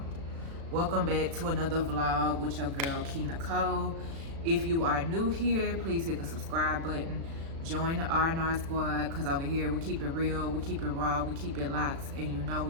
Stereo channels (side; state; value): left; late; 36 ms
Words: welcome back to another vlog with your girl Key Nicole. If you are new here, please hit the subscribe button, join the R&R squad, because over here we keep it real, we keep it raw, we keep it locked, and you know